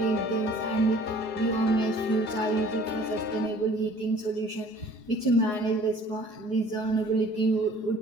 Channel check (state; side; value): late; right; 4.8 ms